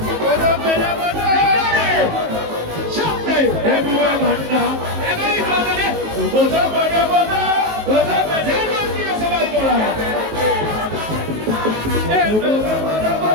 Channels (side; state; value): left; late; 19 ms